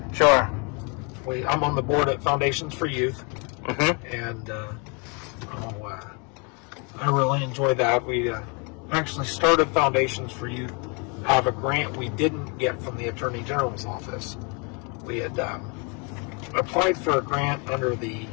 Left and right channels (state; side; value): quieter; right; 33.9 dB